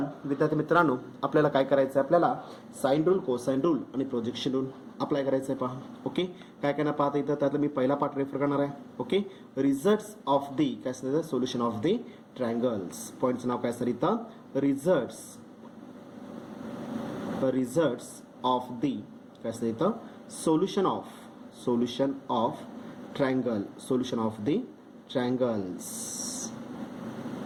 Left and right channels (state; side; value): identical; both; correlation 1.00